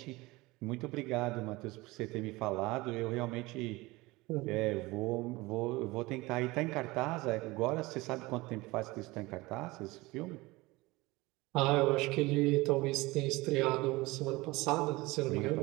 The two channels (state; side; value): quieter; left; 21.6 dB